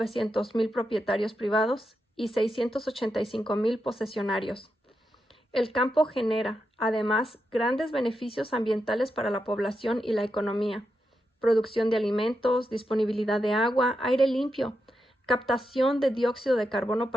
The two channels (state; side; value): normal; both; correlation 0.86